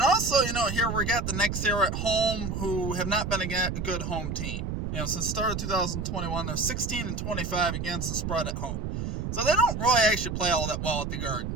here we got the Knicks here at home, who have not been a good home team. Since the start of 2021, they're 16-25 against the spread at home. So they don't really actually play all that well at the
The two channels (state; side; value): noise; right; rumble, 3 dB below the sound